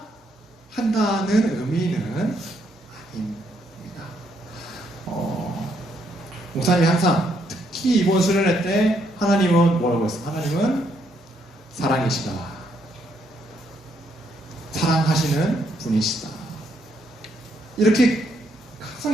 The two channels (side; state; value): both; normal; correlation 0.74